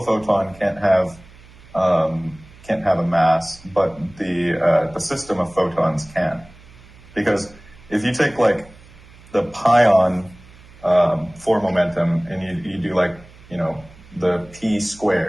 photon can't have a mass, but the system of photons can. Because if you take the pion four momentum and you do the p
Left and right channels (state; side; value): noise; right; hum, 23 dB below the sound